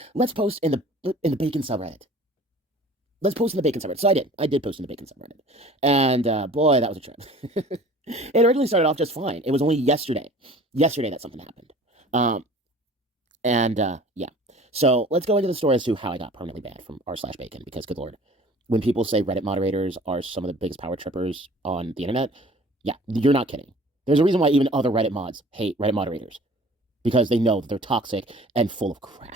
let's post in the bacon subreddit. Let's post in the bacon subreddit. So I did. I did post in the bacon subreddit. And boy, that was a trip. It originally started off just fine. It was only yesterday that something happened. Um, and yeah. So let's go into the story as to how I got permanently banned from r slash bacon because good lord, when people say Reddit moderators are some of the biggest power trippers on the internet, yeah, you're not kidding. There's a reason why even other Reddit mods hate Reddit moderators because they know that they're toxic and full of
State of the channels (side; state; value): both; normal; correlation 0.47